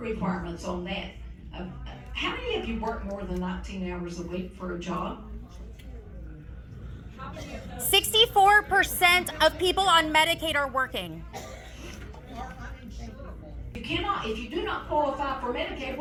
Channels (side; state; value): both; identical; correlation 1.00